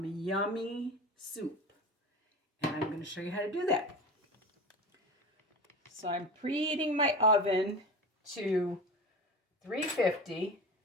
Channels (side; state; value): both; normal; correlation 0.30